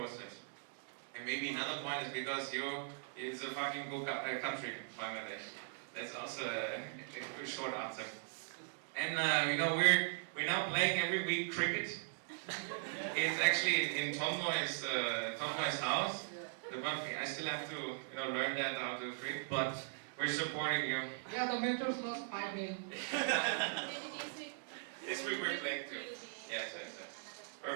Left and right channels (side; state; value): left; silent; digital silence